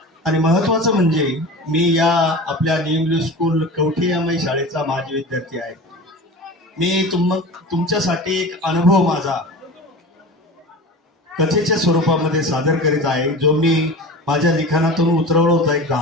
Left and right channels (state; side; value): normal; both; correlation 0.33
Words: आणि महत्वाचं म्हणजे मी या आपल्या न्यू स्कूल कवठीयामाई शाळेचा माजी विद्यार्थी आहे। मी तुमच्यासाठी एक अनुभव माझा कथेच्या स्वरूपामध्ये सादर करीत आहे, जो मी माझ्या लिखाणातून उतरवला होता एक